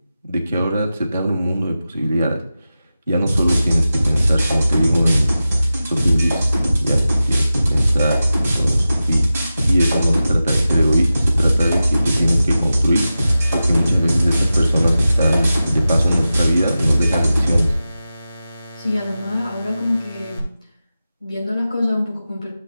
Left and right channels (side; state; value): both; inverted; correlation -0.93